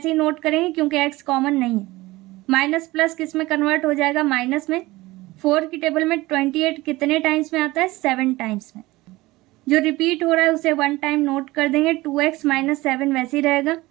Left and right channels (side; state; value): left; quieter; 19.8 dB